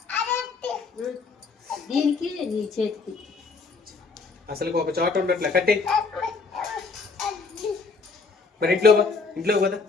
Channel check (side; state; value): right; quieter; 4.4 dB